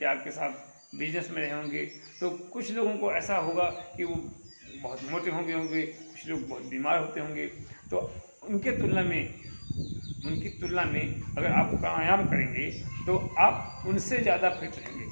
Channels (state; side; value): inverted; both; correlation -1.00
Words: या आपके साथ बिजनेस में रहे होंगे, तो कुछ लोगों को ऐसा होगा कि वो बहुत मोटे होंगे, कुछ लोग बहुत बीमार होते होंगे। तो उनकी तुलना में अगर आप प्राणायाम करेंगे तो आप उनसे ज़्यादा फिट